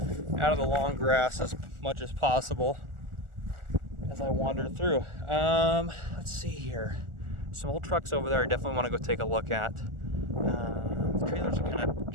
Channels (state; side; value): late; left; 1.4 ms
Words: out of the long grass as much as possible as I wander through. Let's see here. Some old trucks over there I definitely want to go take a look at. The trailers are kind of